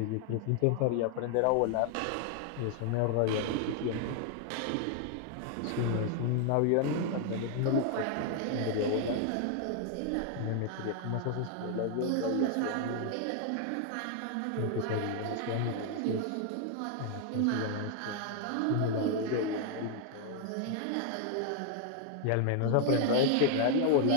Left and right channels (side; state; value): both; different; correlation 0.00